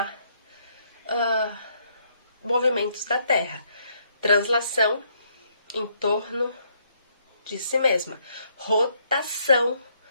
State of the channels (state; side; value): inverted; both; correlation -0.71